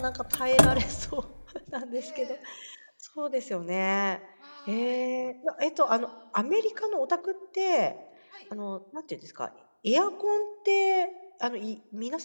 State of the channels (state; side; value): inverted; both; correlation -1.00